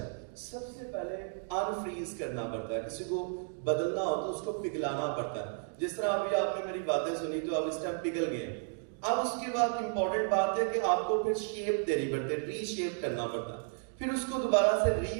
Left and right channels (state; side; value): silent; left; 56 dB below the other